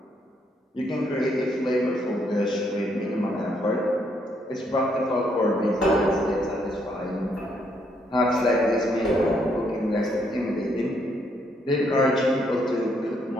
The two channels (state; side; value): normal; both; correlation 0.73